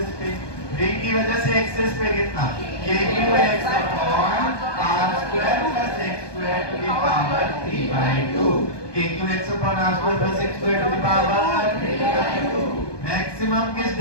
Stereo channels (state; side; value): late; right; 1.2 ms